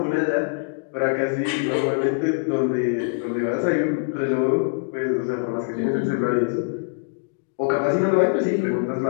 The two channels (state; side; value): silent; right; digital silence